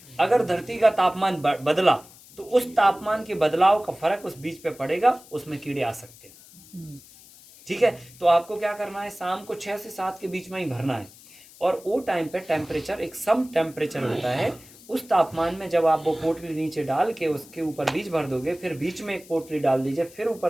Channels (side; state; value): left; noise; hiss, 22 dB below the sound